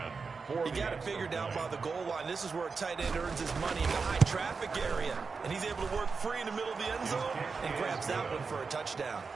got it figured out by the goal line. This is where a tight end earns his money in the high traffic area. And he's able to work free in the middle of the end zone and grabs that one for a touchdown.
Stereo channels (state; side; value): quieter; left; 4.8 dB